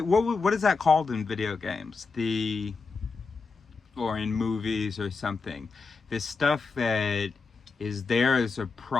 is that called in video games? Or in movies or something. This stuff that is there as a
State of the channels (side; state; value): right; quieter; 4.5 dB